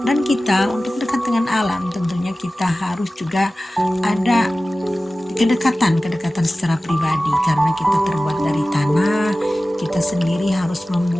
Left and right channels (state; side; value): normal; both; correlation 0.96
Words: Dan kita untuk dekat dengan alam tentunya kita harus juga ada kedekatan secara pribadi, karena kita terbuat dari tanah, kita sendiri harus